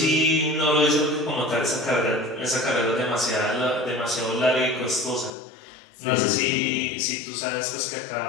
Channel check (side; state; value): right; drops out; at 5.3 s